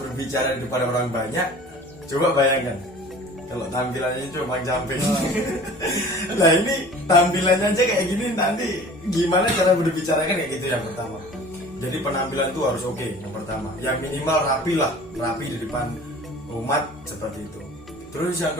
di depan orang banyak, coba bayangkan kalau tampilannya cuma camping. Nah ini tampilannya aja kayak gini, nanti gimana cara berbicara kan kayak gitu yang pertama. Jadi penampilan itu harus oke yang pertama. Yang minimal rapi di depan umat seperti itu. Terus yang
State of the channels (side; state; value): both; normal; correlation 0.44